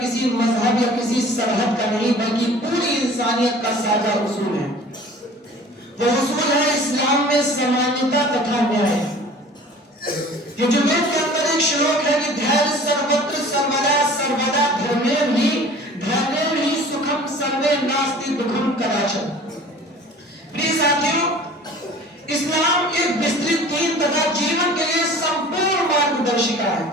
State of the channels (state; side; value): normal; both; correlation 0.45